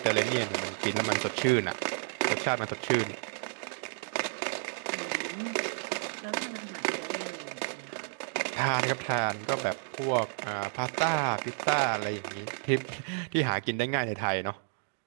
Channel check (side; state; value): left; silent; digital silence